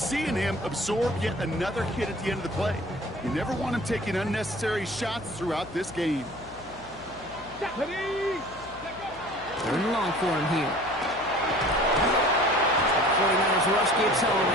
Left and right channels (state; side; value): noise; left; hum, 20 dB below the sound